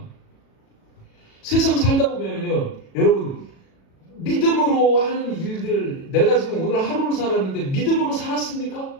세상 살다 보면요 여러분 믿음으로 하는 일들, 내가 지금 오늘 하루를 살았는데 믿음으로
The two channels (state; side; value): late; right; 37 ms